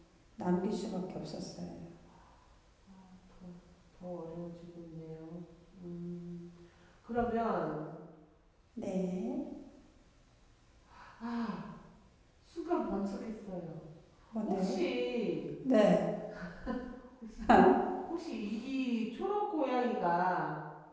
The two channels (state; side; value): identical; both; correlation 1.00